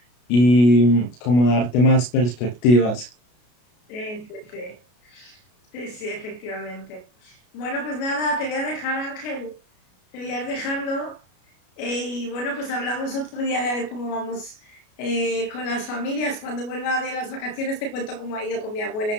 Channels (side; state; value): right; late; 33 ms